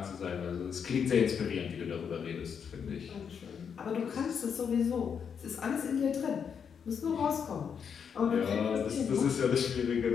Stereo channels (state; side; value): quieter; right; 7.0 dB